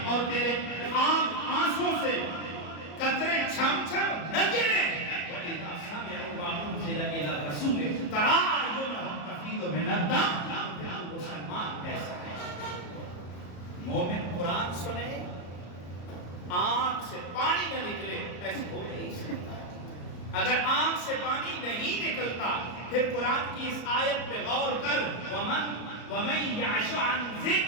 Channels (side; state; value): right; late; 34 ms